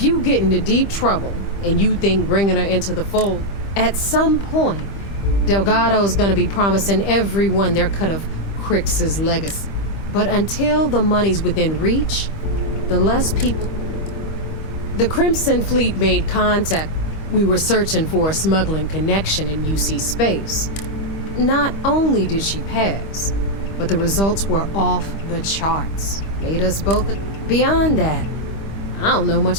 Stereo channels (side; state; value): right; late; 25 ms